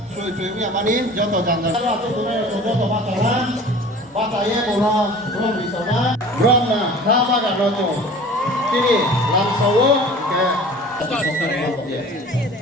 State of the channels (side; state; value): both; normal; correlation 0.43